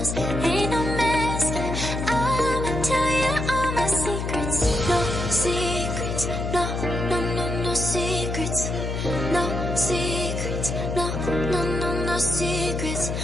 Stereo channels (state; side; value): noise; left; hum, 3 dB below the sound